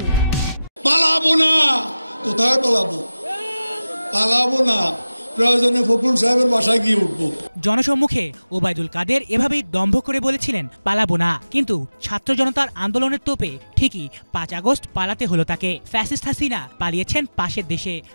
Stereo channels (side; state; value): both; inverted; correlation -0.96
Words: পালাবো না, কোথায় পালাবো? পালাবো না, প্রয়োজনে ফখরুল সাহেবের বাসায় গিয়ে উঠবো। জনসম্মুখে ওবায়দুল কাদের এভাবেই দম্ভ করে বলেছিলেন পালাবো না, কিন্তু ছাত্র জনতার আন্দোলনের তোপে ঠিকই 5 আগস্ট পালাতে হলো তাকে। ফ্যাসিস্ট হাসিনা পালিয়েছেন পাশের দেশে,